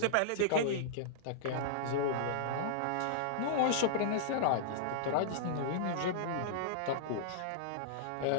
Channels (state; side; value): different; both; correlation -0.02